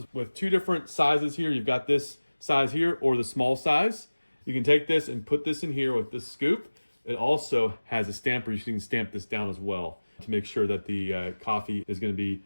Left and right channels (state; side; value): inverted; both; correlation -1.00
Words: with two different sizes here. You've got this size here or the small size. You can take this and put this in here with this scoop. It also has a stamper. You can stamp this down as well to make sure that the coffee is going to be